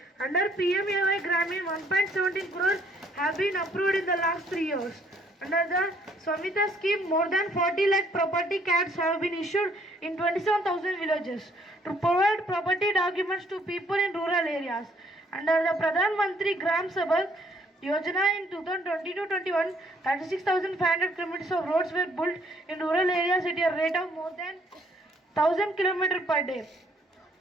Under PMAY Gramin, 1.17 crore have been approved in the last 3 years. Under the Swamita scheme, more than 40 lakh property cards have been issued in 27,000 villages to provide property documents to people in rural areas. Under the Pradhan Mantri Gram Sabha Yojana in 2020-21, 36,500 kilometers of roads were built in rural areas at a rate of more than 1,000 kilometers per day.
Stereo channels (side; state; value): both; normal; correlation 0.64